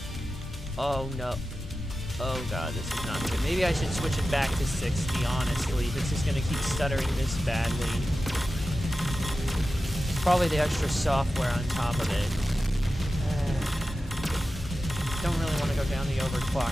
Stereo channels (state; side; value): normal; both; correlation 0.93